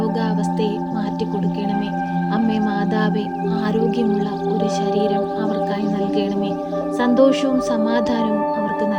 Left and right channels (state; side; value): identical; both; correlation 1.00